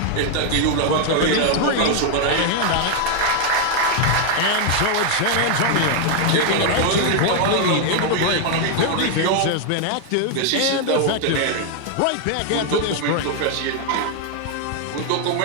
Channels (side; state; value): both; different; correlation 0.00